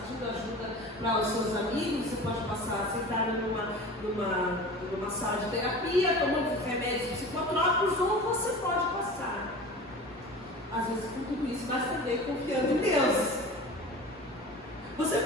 ajuda para os seus amigos, você pode passar sentado numa sala de terapia, tomando remédios psicotrópicos, ou você pode passar, às vezes com tudo isso, mas também confiando em Deus. Você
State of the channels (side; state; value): both; normal; correlation 0.36